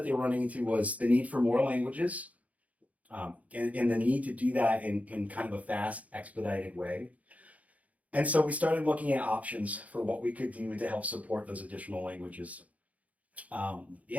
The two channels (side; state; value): left; late; 0.070 ms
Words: they were running into was the need for more languages and the need to do that in kind of a fast, expedited way. And so we started looking at options for what we could do to help support those additional languages.